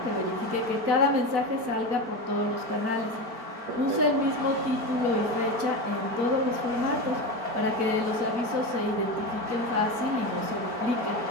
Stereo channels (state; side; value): late; left; 4.5 ms